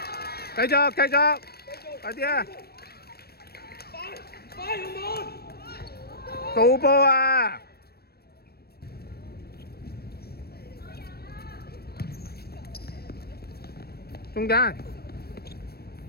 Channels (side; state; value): right; late; 0.46 ms